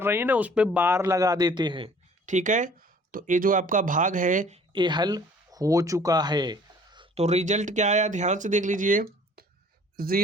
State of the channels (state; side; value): normal; both; correlation 0.53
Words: रही हैं ना, उस पर बार लगा देते हैं। ठीक है, तो ये जो आपका भाग है ये हल हो चुका है। तो रिजल्ट क्या आया, ध्यान से देख लीजिए।